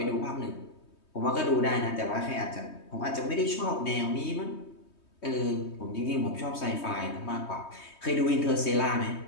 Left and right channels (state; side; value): late; right; 3.2 ms